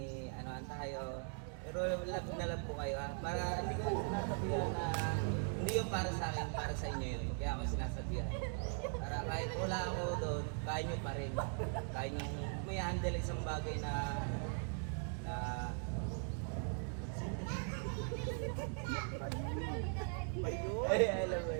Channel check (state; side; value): silent; left; 51 dB below the other